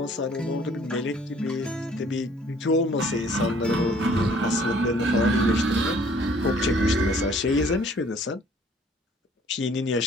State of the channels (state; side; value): normal; both; correlation 0.57